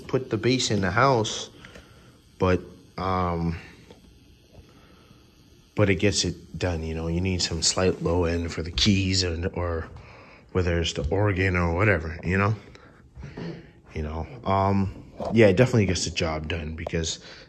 put the bass in the house, but it gets it done. You know, you need some slight low end for the keys, or whether it's the organ or whatever. You know, yeah, it definitely gets the job done, because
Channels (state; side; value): identical; both; correlation 1.00